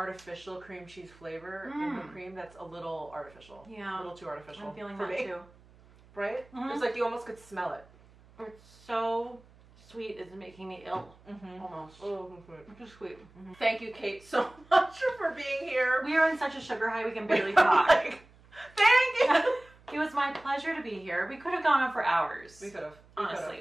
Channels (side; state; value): right; noise; hum, 26 dB below the sound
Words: cream cheese flavor in the cream that's a little artificial. Yeah. A little too artificial. I'm feeling that too. Right? It's like you almost could smell it. It's so sweet, it's making me ill. Almost. Oh, it's just sweet. Thank you, Kate, so much for being here. We are in such a sugar high we can barely talk. Thank you. It was my pleasure to be here. We could have gone on for hours. We could have.